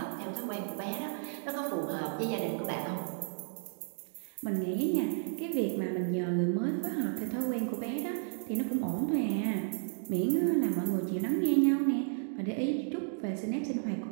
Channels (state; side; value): silent; left; digital silence